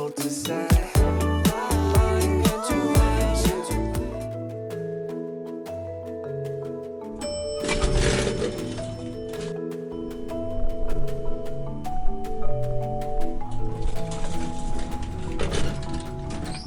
to say my intuition to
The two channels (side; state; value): both; identical; correlation 1.00